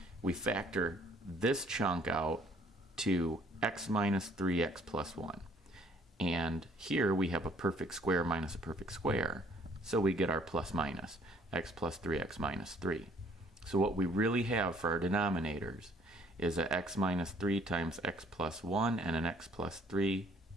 We factor this chunk out to x minus 3x plus 1. And here we have a perfect square minus a perfect square, so we get our plus minus, x plus 3x minus 3. So what we really have for our denominators is a x minus 3 times x plus 1 and an x plus 3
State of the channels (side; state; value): both; normal; correlation 0.60